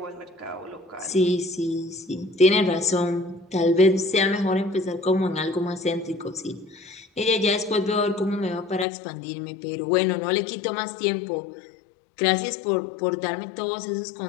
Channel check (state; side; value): drops out; right; at 8.8 s